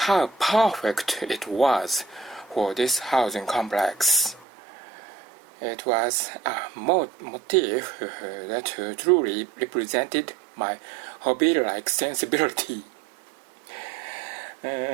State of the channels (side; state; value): left; drops out; at 4.5 s